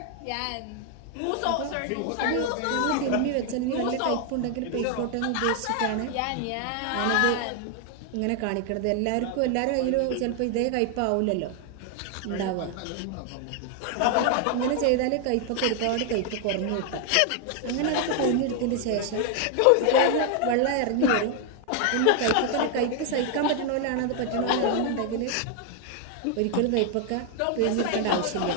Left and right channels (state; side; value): different; both; correlation 0.00